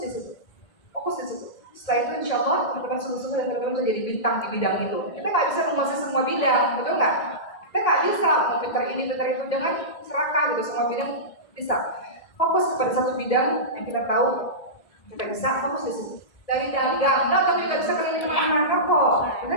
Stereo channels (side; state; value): right; late; 1.8 ms